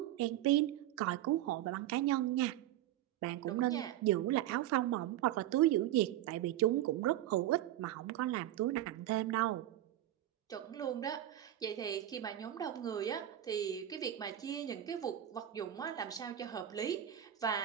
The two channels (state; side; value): quieter; left; 12.7 dB